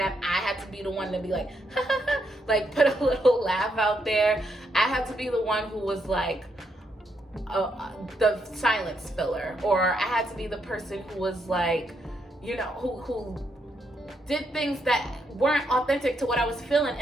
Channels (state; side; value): normal; both; correlation 0.78